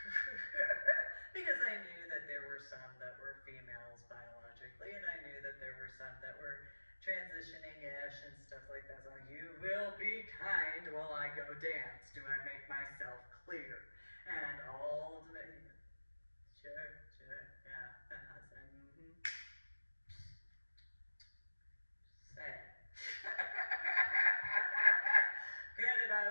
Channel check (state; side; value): inverted; both; correlation -1.00